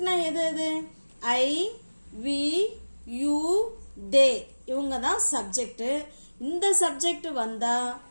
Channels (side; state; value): both; inverted; correlation -1.00